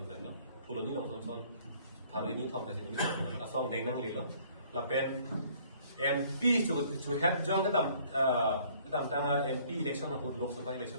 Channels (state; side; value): inverted; both; correlation -0.58